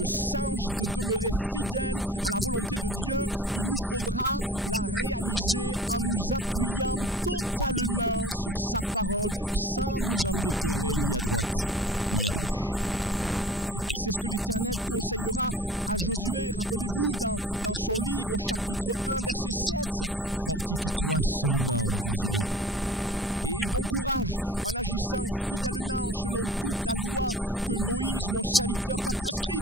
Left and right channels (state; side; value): normal; both; correlation 0.43